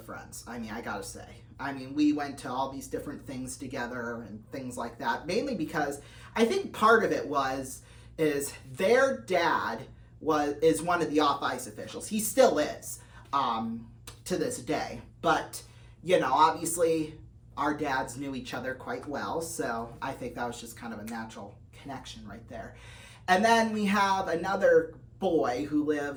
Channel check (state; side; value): identical; both; correlation 1.00